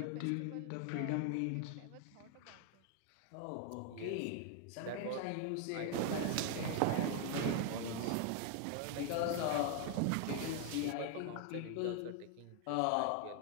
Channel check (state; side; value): different; both; correlation 0.00